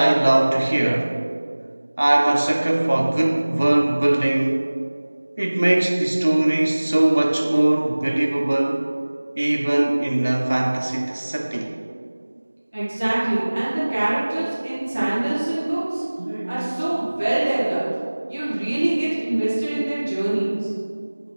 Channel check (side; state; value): both; inverted; correlation -1.00